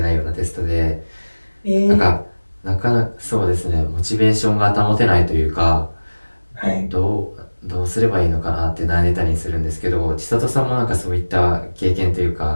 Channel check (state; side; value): inverted; both; correlation -1.00